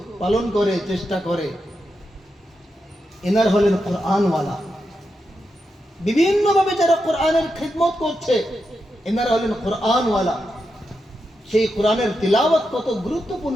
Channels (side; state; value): both; normal; correlation 0.87